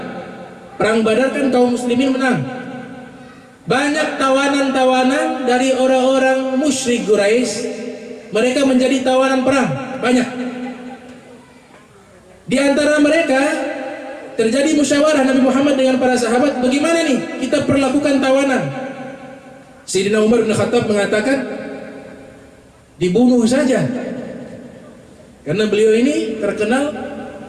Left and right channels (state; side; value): identical; both; correlation 1.00